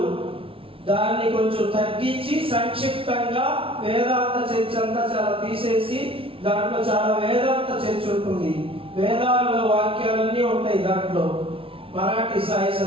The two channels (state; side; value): late; left; 0.26 ms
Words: దాన్ని కొంచెం తగ్గించి సంక్షిప్తంగా వేదాంత చర్చ అంతా చాలా తీసేసి దాంట్లో చాలా వేదాంత చర్చ ఉంటుంది. వేదాల్లో వాక్యాలన్నీ ఉంటాయి దాంట్లో. మరాఠీ సాయి